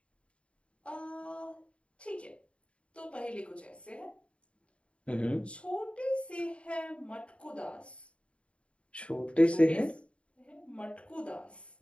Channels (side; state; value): right; late; 0.060 ms